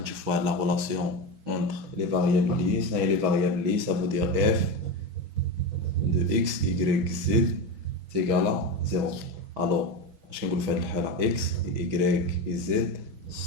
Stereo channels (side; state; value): left; late; 6.1 ms